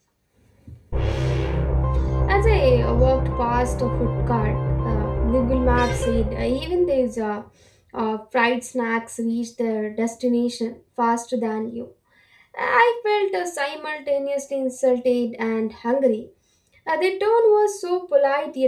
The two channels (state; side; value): identical; both; correlation 1.00